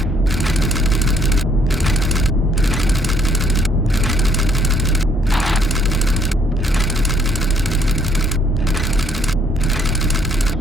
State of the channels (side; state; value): both; normal; correlation 0.66